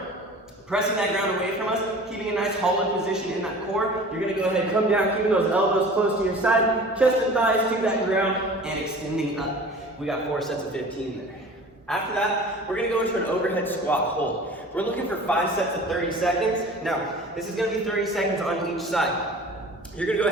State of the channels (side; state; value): both; normal; correlation 0.42